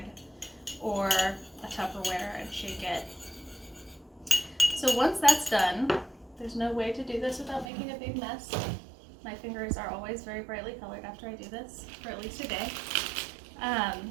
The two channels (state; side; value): drops out; left; at 7.7 s